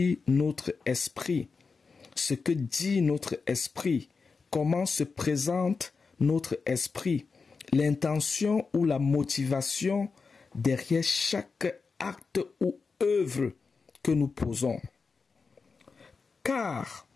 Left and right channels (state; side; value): quieter; right; 4.7 dB